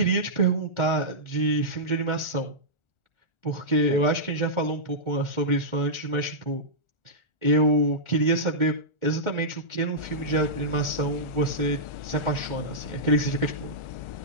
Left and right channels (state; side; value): late; right; 1.4 ms